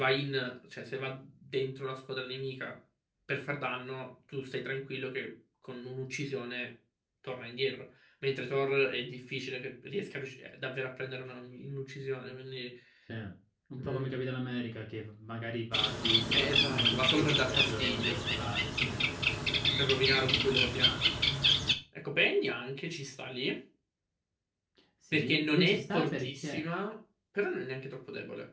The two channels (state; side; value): identical; both; correlation 1.00